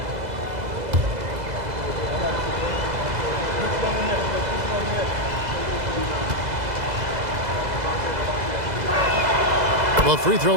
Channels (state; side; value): late; left; 2.0 ms